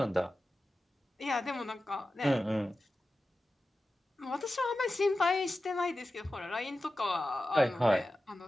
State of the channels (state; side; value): normal; both; correlation 0.93